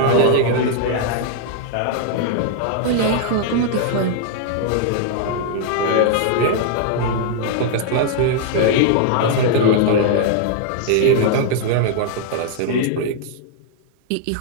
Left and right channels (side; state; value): both; different; correlation -0.01